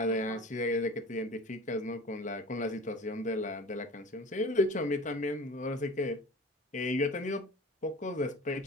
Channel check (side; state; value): both; normal; correlation 0.40